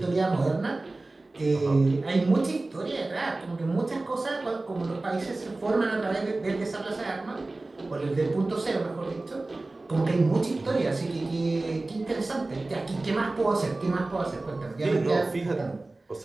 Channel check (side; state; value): left; quieter; 3.1 dB